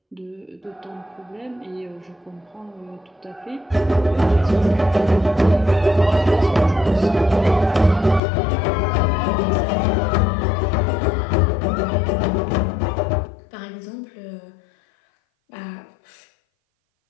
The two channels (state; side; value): drops out; right; at 8.2 s